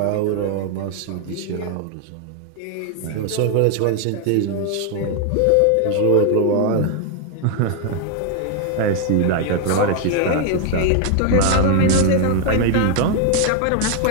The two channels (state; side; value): different; both; correlation 0.00